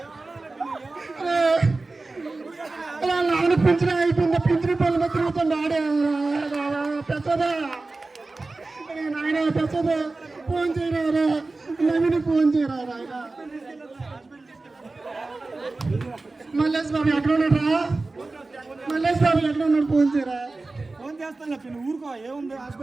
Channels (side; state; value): left; quieter; 3.4 dB